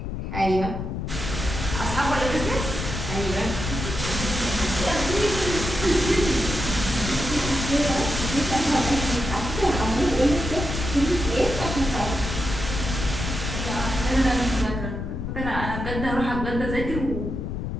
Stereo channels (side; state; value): left; noise; rumble, 5 dB below the sound